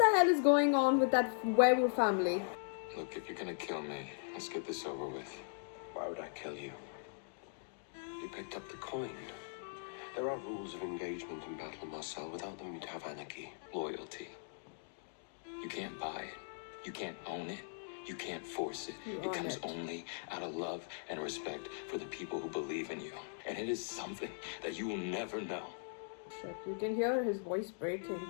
hell is going on with that werewolf family? Look, if you're gonna kill me, let's get this over with. Why would I kill you? You picked up the coin. There are rules of engagement in battle, Marcel. Without them, you'd have anarchy. Loyalty. You can't buy it. You can't own it. You can't force it. It comes only out of love and respect for the people who believe in you. And it is something that you will never know. Shit, you can hear his voice breaking.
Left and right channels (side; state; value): right; silent; digital silence